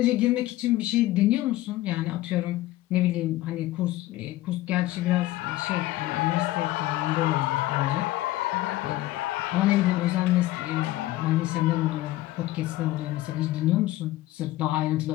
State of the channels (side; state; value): right; quieter; 16.3 dB